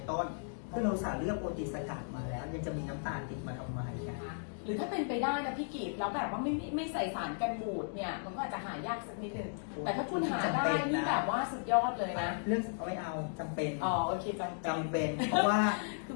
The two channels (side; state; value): right; silent; digital silence